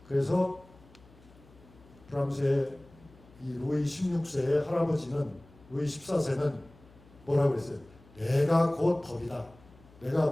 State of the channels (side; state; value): left; noise; hum, 25 dB below the sound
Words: 그래서 프랑스의 이 루이 16세의 할아버지는 루이 14세는 뭐라고 했어요? 내가 곧 법이다. 내가